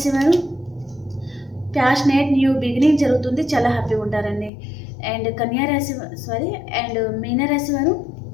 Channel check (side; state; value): right; drops out; at 4.5 s